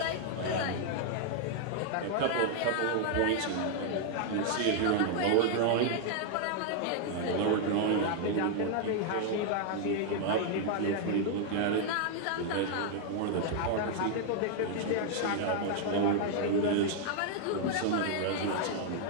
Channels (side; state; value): both; different; correlation 0.00